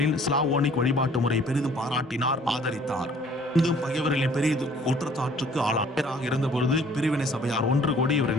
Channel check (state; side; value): normal; both; correlation 0.56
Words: ஸ்லாவோனிக் வழிபாட்டு முறையை பெரிதும் பாராட்டினார், ஆதரித்தார். இங்கும் பகைவர்களின் பெரிய குற்றச்சாட்டுக்கு ஆளாக இருந்தபொழுது பிரிவினை சபையார் ஒன்று கூடி இவரை